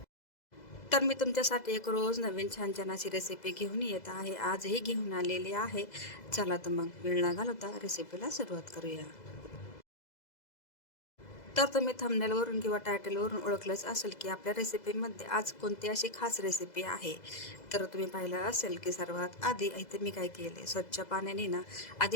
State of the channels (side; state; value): right; late; 2.0 ms